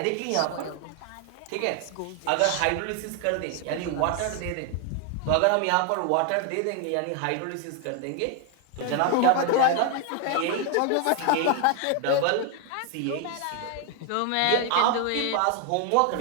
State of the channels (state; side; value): different; both; correlation 0.00